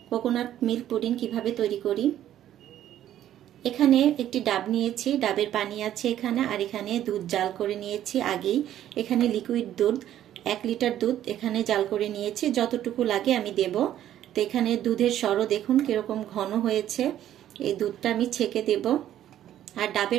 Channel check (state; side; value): quieter; left; 11.8 dB